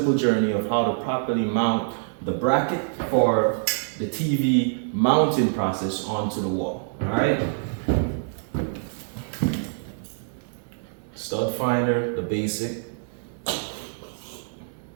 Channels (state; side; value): silent; left; digital silence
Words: journey of how to properly mount the bracket for the TV mounting process onto the wall. Alright? Stud finder, the basic.